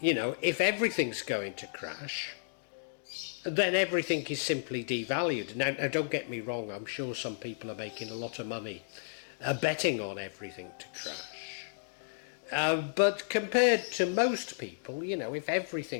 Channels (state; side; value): silent; right; digital silence